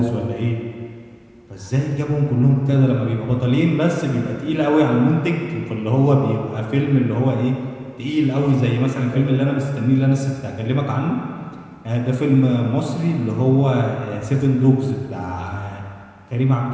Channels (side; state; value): both; identical; correlation 1.00